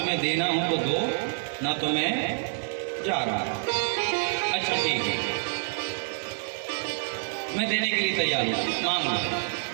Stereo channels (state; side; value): silent; left; digital silence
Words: देना हो तो दो, ना तो मैं जा रहा। अच्छा ठीक है, मैं देने के लिए तैयार हूँ, मांग लो।